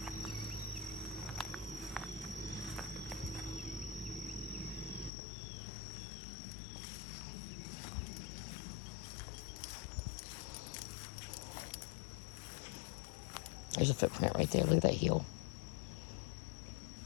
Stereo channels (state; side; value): drops out; right; at 5.1 s